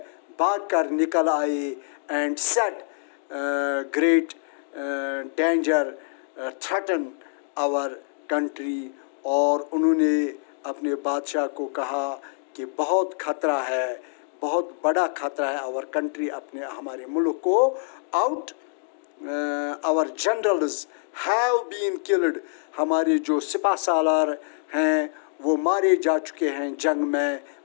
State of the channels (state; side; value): silent; right; digital silence